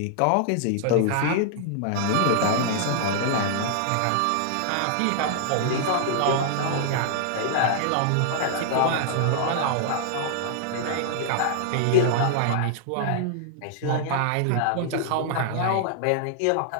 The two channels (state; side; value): different; both; correlation -0.01